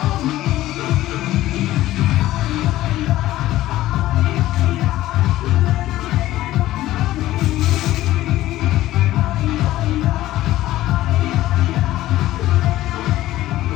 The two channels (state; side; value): quieter; right; 15.3 dB